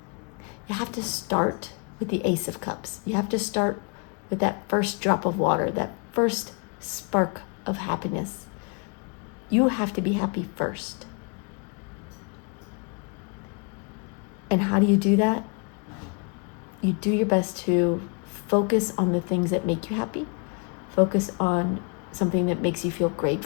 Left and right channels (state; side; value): quieter; right; 34.2 dB